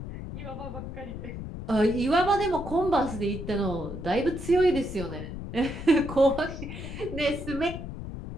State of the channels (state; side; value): noise; left; rumble, 8 dB below the sound